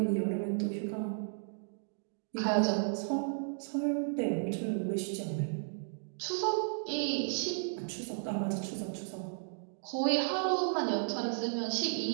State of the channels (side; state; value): left; silent; digital silence